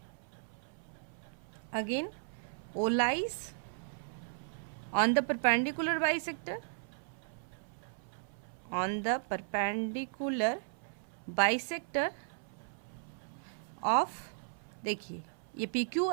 again O lies on the perpendicular bisector, on the perpendicular bisector of, देखिए ये PQ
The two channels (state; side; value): silent; left; 54 dB below the other